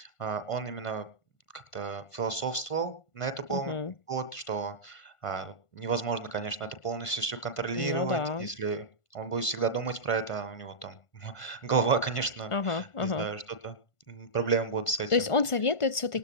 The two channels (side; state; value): right; late; 1.5 ms